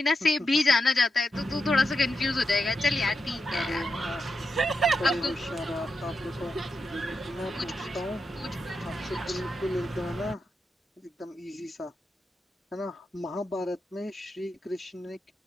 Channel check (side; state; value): both; normal; correlation 0.86